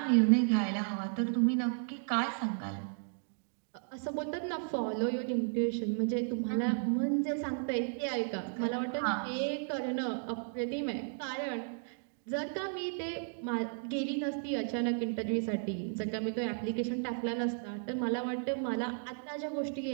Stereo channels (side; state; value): left; silent; digital silence